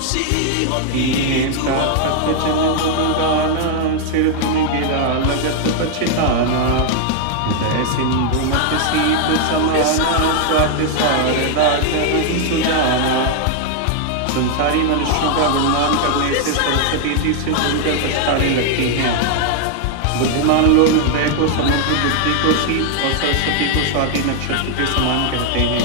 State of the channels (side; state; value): both; different; correlation 0.00